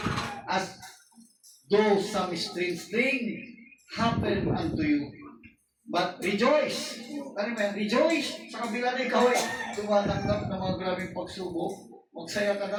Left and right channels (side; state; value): both; identical; correlation 1.00